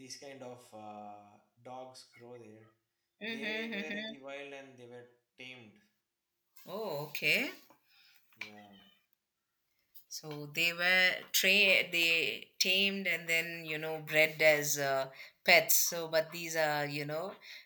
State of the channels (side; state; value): both; identical; correlation 1.00